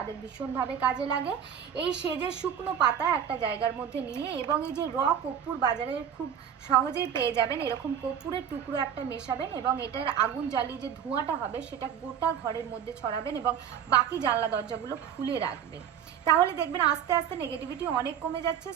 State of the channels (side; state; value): left; quieter; 8.6 dB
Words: ভীষণভাবে কাজে লাগে। এই সেজের শুকনো পাতা একটা জায়গার মধ্যে নিয়ে, এবং এই যে কর্পূর বাজারে খুব সহজেই পেয়ে যাবেন, এরকম কর্পূরের টুকরো একটা মেশাবেন এবং এটার আগুন জ্বালিয়ে যে ধোঁয়াটা হবে সেটা গোটা ঘরের মধ্যে ছড়াবেন এবং বাকি জানলা দরজাগুলো খুলে রাখবেন। তাহলে দেখবেন আস্তে আস্তে নেগেটিভিটি অনেক কমে যাচ্ছে।